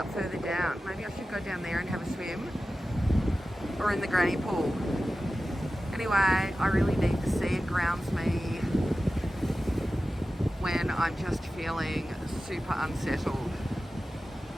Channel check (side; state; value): both; normal; correlation 0.94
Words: further down. Maybe I should go down there and have a swim, or in the granny pool. Anyway, I really need the sea. It grounds me when I'm just feeling super unsettled.